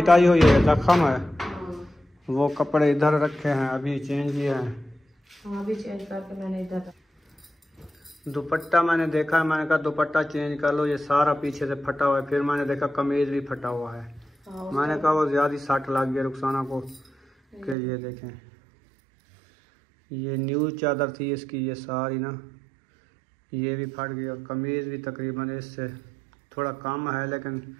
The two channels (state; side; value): drops out; left; at 17.8 s